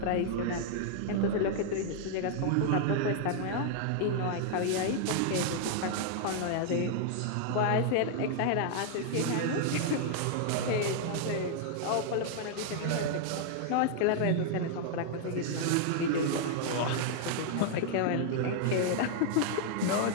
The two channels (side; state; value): both; different; correlation 0.00